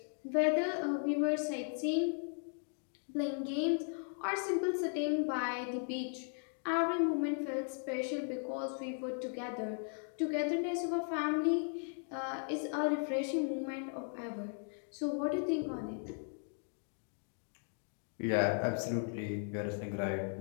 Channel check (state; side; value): silent; right; 53 dB below the other